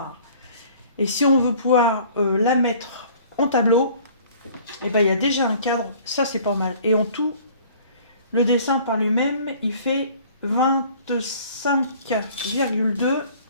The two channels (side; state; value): both; inverted; correlation -0.52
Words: Et si on veut pouvoir la mettre en tableau, et ben il y a déjà un cadre, ça c'est pas mal. Et en tout, le dessin par lui-même, il fait 25,2.